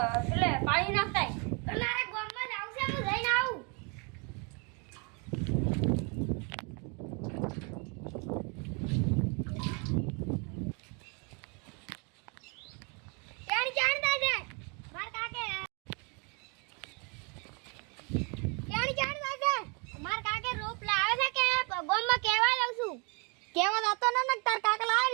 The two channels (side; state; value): left; quieter; 33.3 dB